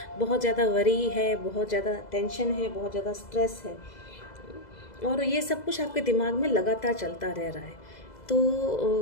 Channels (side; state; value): right; late; 2.0 ms